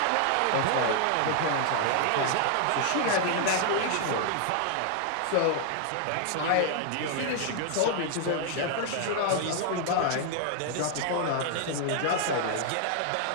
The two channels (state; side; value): different; both; correlation 0.00